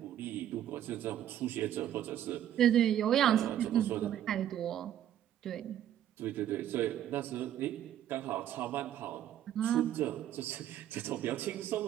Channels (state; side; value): quieter; left; 11.2 dB